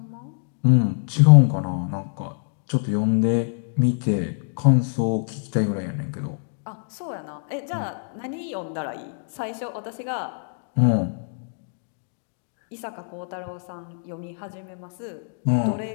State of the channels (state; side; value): silent; right; digital silence